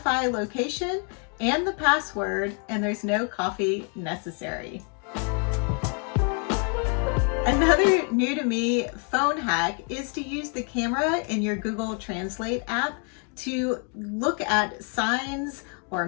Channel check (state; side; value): quieter; right; 39.1 dB